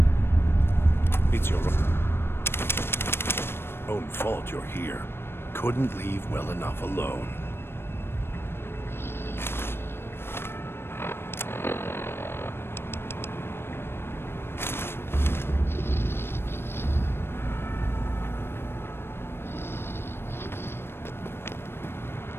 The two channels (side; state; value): right; late; 0.11 ms